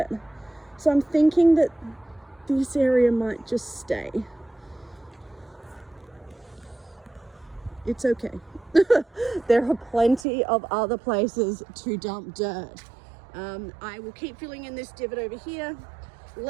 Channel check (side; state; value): left; drops out; at 10.2 s